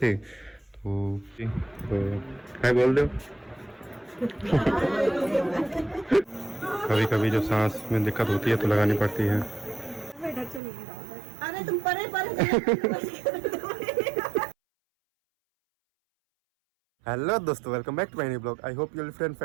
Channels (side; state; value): left; drops out; at 10.6 s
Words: तो क्या बोल दो। कभी कभी जो सांस में दिक्कत होती है तो लगानी पड़ती है। अरे तुम परे हेलो दोस्तों, welcome back to my new blog. I hope you friend